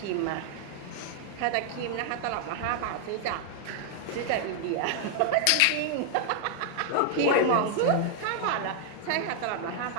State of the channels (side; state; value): both; different; correlation 0.00